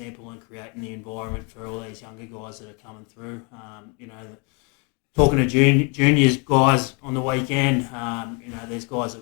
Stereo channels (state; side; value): quieter; right; 33.7 dB